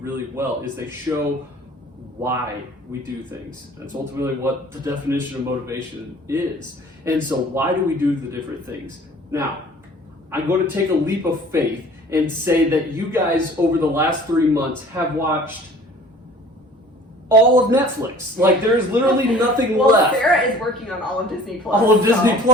really well, is they show why we do things. That's ultimately what the definition of motivation is. And so why do we do the different things? Now, I'm going to take a leap of faith and say that you guys over the last 3 months have watched all of Netflix. Like, there's literally nothing left. Sarah is working on all of Disney Plus. All of Disney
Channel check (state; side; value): normal; both; correlation 0.49